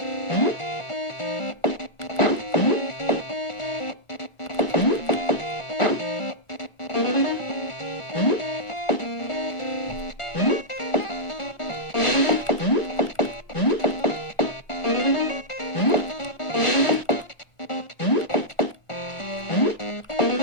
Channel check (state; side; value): late; right; 1.4 ms